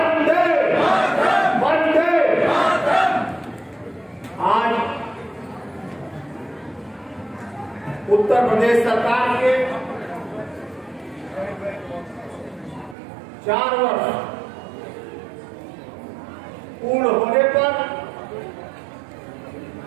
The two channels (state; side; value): drops out; left; at 13.0 s